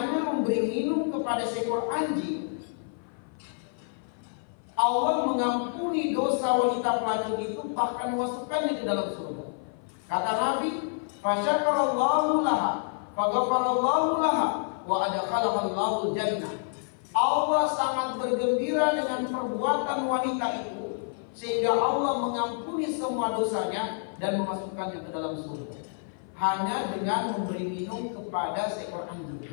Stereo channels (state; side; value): silent; right; 55 dB below the other